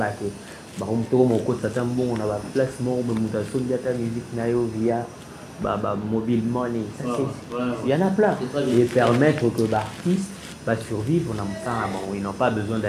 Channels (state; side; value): identical; both; correlation 1.00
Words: que on a placement, ta musique via mobile money. Il y en a plein. Et permettre que l'artiste va survivre, ils n'ont pas besoin